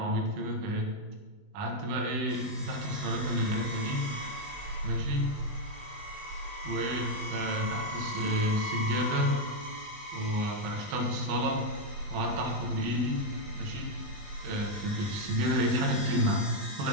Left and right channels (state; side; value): late; left; 20 ms